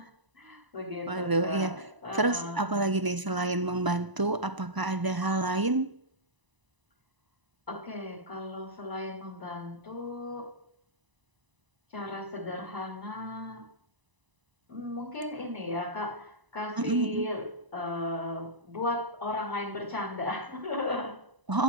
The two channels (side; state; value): left; late; 1.0 ms